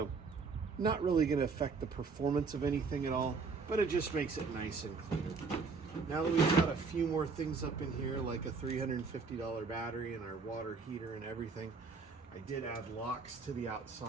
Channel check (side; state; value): left; quieter; 4.7 dB